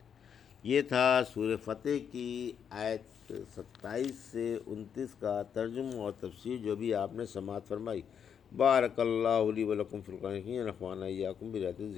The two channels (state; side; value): quieter; right; 7.8 dB